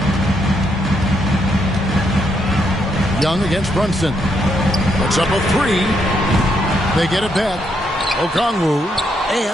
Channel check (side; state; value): both; normal; correlation 0.76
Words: Young against Brunson. Puts up a 3. They get it back. Okongwu.